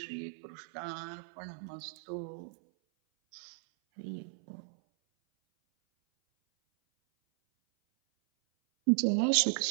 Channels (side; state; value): left; silent; 54 dB below the other